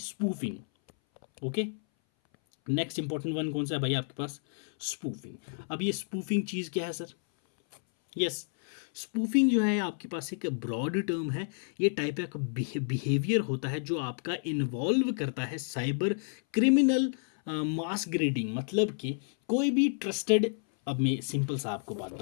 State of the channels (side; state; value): right; silent; 57 dB below the other